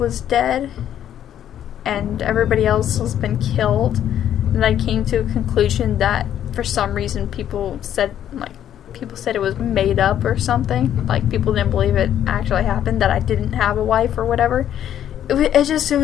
dead and everybody else has been killed, and I came to a conclusion that for some reason people said it was made up or something, like people didn't believe it actually happened, that I didn't have a wife or whatever. It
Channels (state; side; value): quieter; right; 10.5 dB